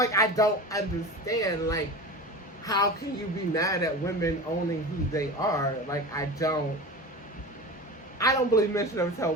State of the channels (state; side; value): normal; both; correlation 0.30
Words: I don't understand. Like, how can you be mad at women owning who they are? Like, I don't believe men should ever tell